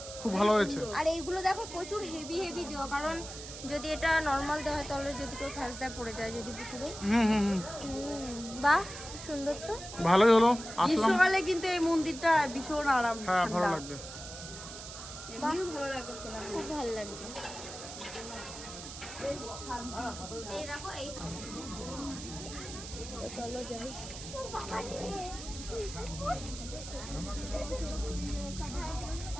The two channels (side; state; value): right; noise; hiss, 11 dB below the sound